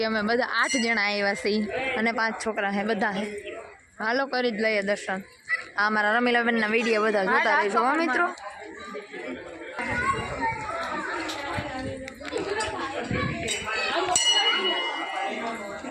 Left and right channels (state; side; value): identical; both; correlation 1.00